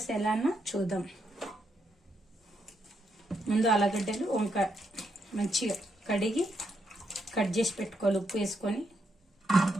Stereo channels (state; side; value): normal; both; correlation 0.79